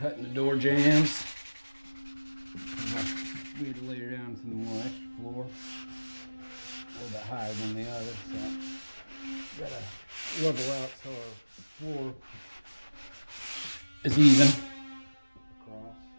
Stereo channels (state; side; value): inverted; both; correlation -1.00